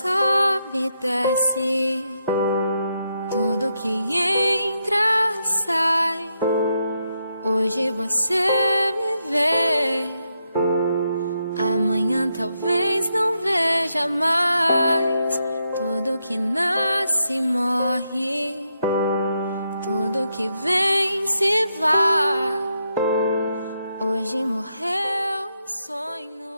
e desce, tudo que entra sai. Hoje você me vê, amanhã talvez não veja mais. Tudo que nasce morre, tudo que vem se vai. Hoje morreu.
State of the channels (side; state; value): both; inverted; correlation -0.82